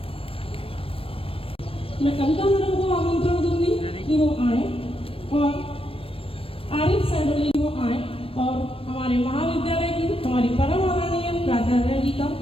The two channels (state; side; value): late; right; 0.27 ms